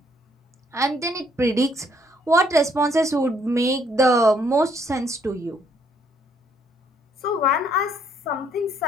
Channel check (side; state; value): both; normal; correlation 0.67